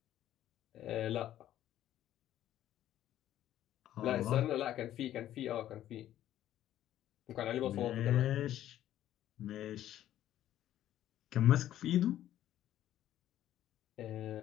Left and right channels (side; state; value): right; quieter; 12.4 dB